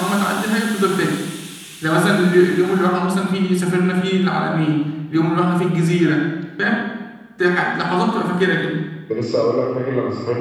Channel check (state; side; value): identical; both; correlation 1.00